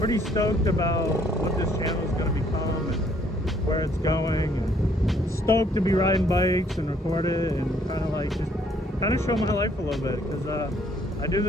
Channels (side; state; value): both; normal; correlation 0.65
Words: stoked about what this channel is gonna become and where it's going, and stoked to be riding bikes and record it and kind of like just kind of show my life a little bit, because I do